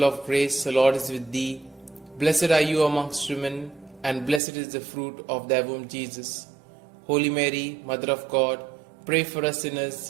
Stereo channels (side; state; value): left; drops out; at 4.4 s